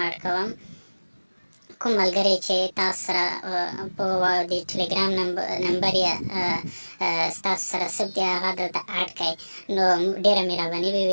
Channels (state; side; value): inverted; both; correlation -1.00